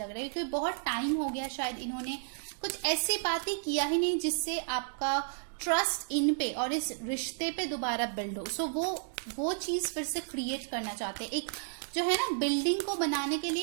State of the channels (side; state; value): left; silent; digital silence